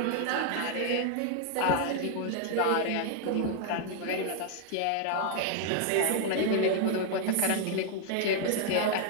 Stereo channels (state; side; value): different; both; correlation 0.00